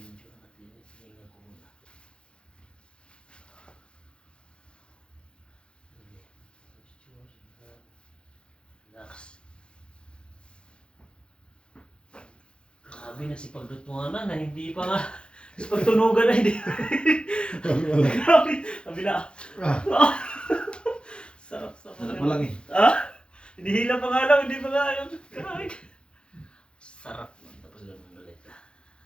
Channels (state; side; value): late; right; 0.054 ms